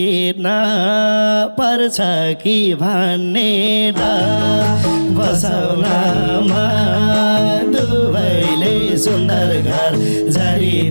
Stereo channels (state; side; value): inverted; both; correlation -1.00